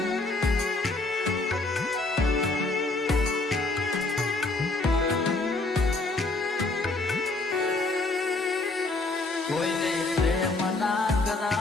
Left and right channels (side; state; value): right; quieter; 3.2 dB